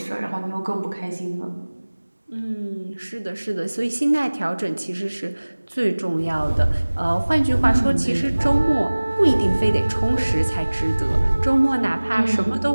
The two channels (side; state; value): both; inverted; correlation -1.00